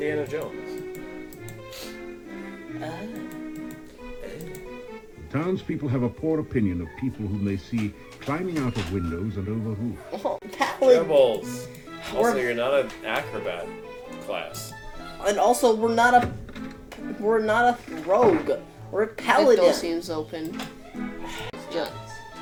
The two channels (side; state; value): both; identical; correlation 1.00